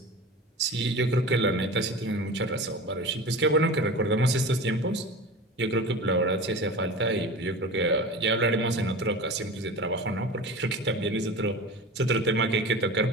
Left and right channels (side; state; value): both; normal; correlation 0.33